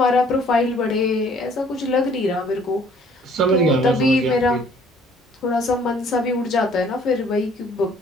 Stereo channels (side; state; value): both; normal; correlation 0.58